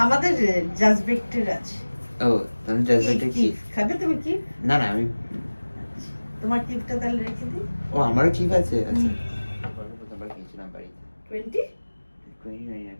আমাদের জাজবেক্টের আছে। ও তুমি জাজবেক্টে কি? খাবে তুমি কি? না না আমি তোমার কিপটা তাহলে রেখে দিই। ও আমারও ঠিক আছে। আচ্ছা প্রথমবার খেয়েছিলাম বাড়িতে 20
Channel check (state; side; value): inverted; both; correlation -1.00